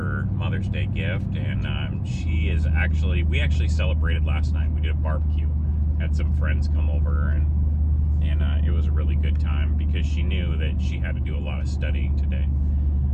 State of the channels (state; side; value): identical; both; correlation 1.00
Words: Mother's Day gift. And we actually celebrated last night. We did a barbecue, had some friends come over, and it was a really good time because she knew that she had to do a lot of studying today.